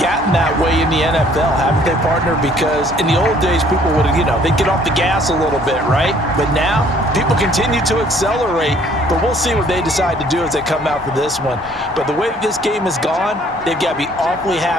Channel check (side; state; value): both; normal; correlation 0.59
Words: gotten that way in the NFL, haven't they, partner? Because in the old days, people would, they'd get off the gas a little bit, right? But now, people continue to accelerate, but we'll see what they decide to do as they come out for this one. But the way this game has gone, they've got to be awfully